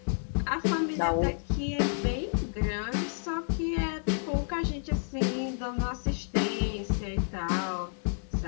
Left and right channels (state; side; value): silent; right; 58 dB below the other